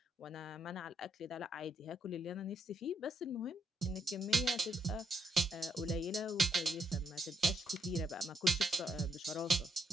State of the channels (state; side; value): normal; both; correlation 0.77